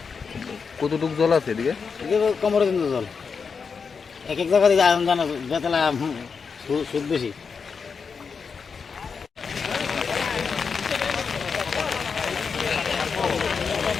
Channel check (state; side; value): quieter; right; 5.6 dB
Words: কতটুকু জল আছে এদিকে? এদিকে কোমরের কিন্তু জল। এক এক জায়গা থেকে আয়রন জানা বেতলা সুদ বেশি।